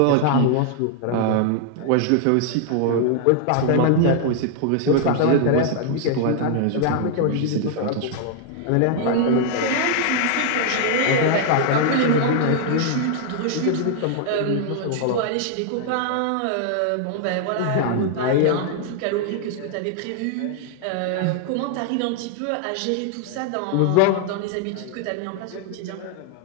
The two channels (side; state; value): both; different; correlation 0.00